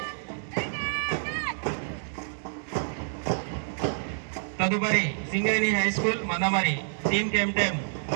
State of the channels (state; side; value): silent; left; digital silence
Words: తదుపరి Singareni high school Mandamarri team captain